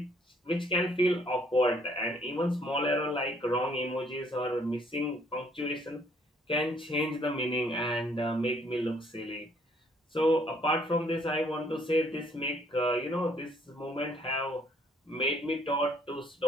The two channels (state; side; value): normal; both; correlation 0.64